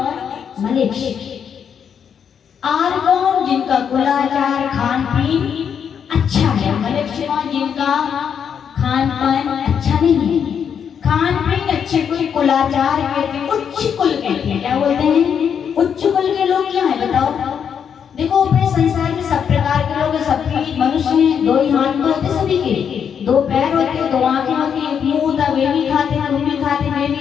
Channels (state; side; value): quieter; right; 7.6 dB